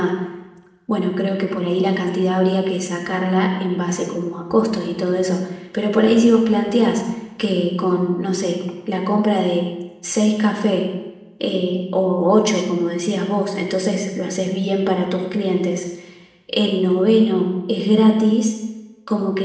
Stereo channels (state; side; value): identical; both; correlation 1.00